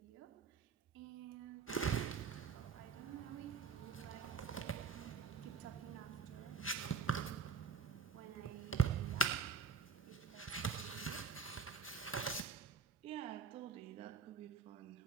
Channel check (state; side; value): quieter; left; 5.9 dB